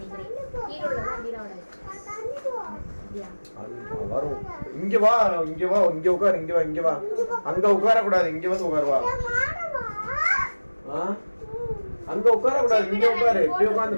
கீழ உள்ளதா மீராவோட. வரும். இங்க வா. உட்கார். அங்க உட்கார கூடாது. இங்க வந்து உட்கார் வா. அங்க உட்கார கூடாது. இங்க உட்காரு. இப்படி உட்கார்ந்து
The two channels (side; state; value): both; inverted; correlation -1.00